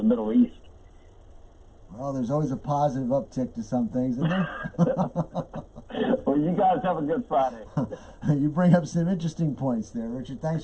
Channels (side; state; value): both; identical; correlation 1.00